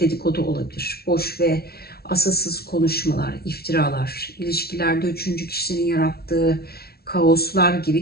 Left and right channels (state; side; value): late; right; 0.45 ms